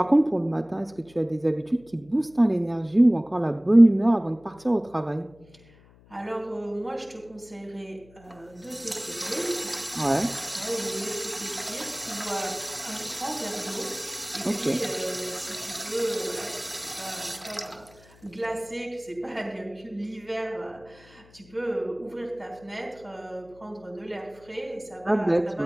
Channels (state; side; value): noise; left; hum, 26 dB below the sound